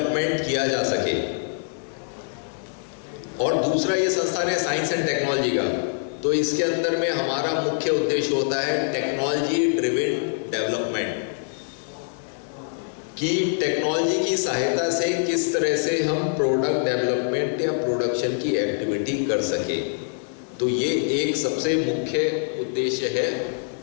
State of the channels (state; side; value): silent; right; 62 dB below the other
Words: किया जा सके। और दूसरा ये संस्थान है साइंस एंड टेक्नोलॉजी का, तो इसके अंदर में हमारा मुख्य उद्देश्य होता है टेक्नोलॉजी ड्रिवन डेवलपमेंट, कि टेक्नोलॉजी की सहायता से किस तरह से हम प्रोडक्ट डेवलपमेंट या प्रोडक्शन की एक्टिविटी कर सके। तो ये एक सबसे मुख्य उद्देश्य है